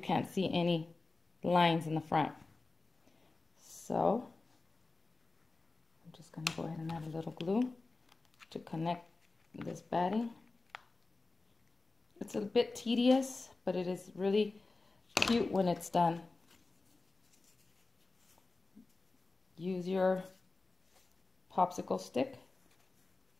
any lines in the front. So I'm just going to go ahead and add a little glue to connect this batting. It's a bit tedious, but it is really cute when it's done. Use your popsicle stick.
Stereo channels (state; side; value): quieter; right; 3.5 dB